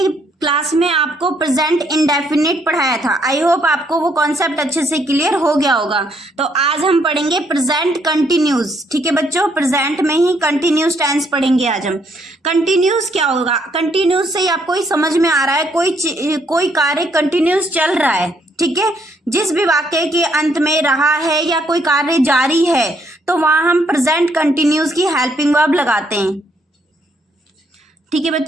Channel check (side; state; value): both; normal; correlation 0.71